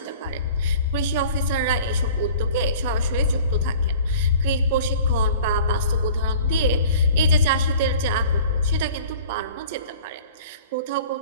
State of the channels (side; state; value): both; inverted; correlation -0.46